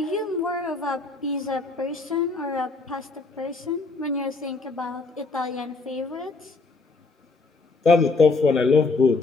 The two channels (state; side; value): quieter; right; 3.8 dB